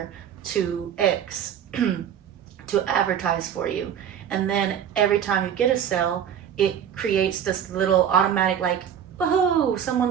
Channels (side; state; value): left; quieter; 8.9 dB